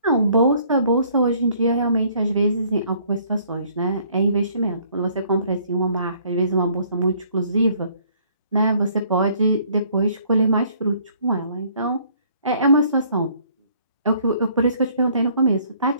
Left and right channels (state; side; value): inverted; both; correlation -0.62